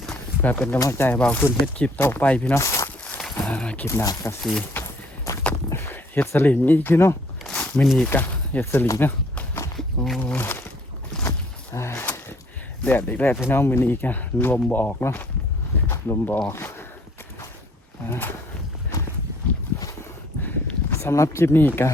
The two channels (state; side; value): normal; both; correlation 0.61